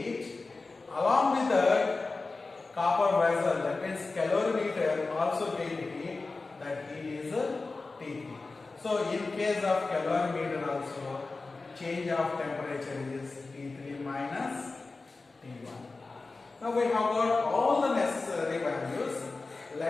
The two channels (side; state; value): right; quieter; 3.7 dB